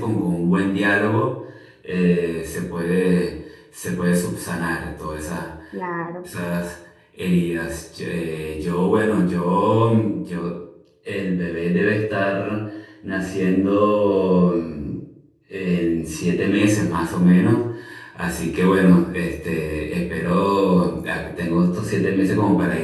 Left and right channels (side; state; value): both; identical; correlation 1.00